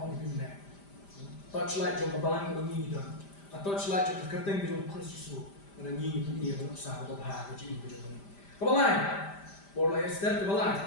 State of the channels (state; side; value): late; right; 5.0 ms